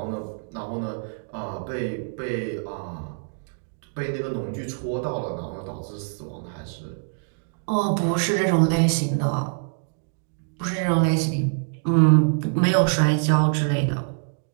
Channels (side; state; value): left; silent; digital silence